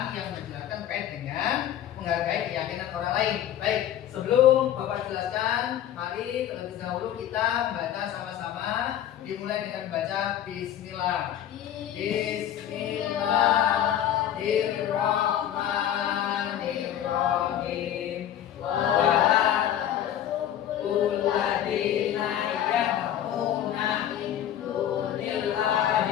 yang menjelaskan terkait dengan menghargai keyakinan orang lain. Baik, sebelum Bapak jelaskan, mari terlebih dahulu kita membaca sama-sama. Dimulai dengan baca Bismillah. Bismillahirrahmanirrahim.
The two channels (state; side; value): quieter; right; 10.9 dB